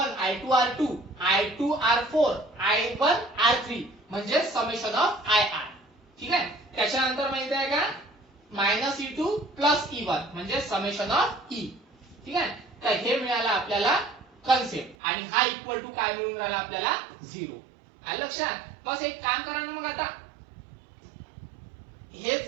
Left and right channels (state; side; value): drops out; left; at 15.0 s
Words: I2 R2, I2 R4, I1 R3 म्हणजे समेशन ऑफ IR. ठीक आहे, त्याच्यानंतर माहिती आहे का -E2 प्लस E1 म्हणजे समेशन ऑफ E. ठीक आहे, तर हे मिळालं आपल्याला कन्सेप्ट, आणि हा इक्वल टू काय मिळून राहिला आपल्याला, 0. आलं लक्षात. बस एक काम करा ना मग आता,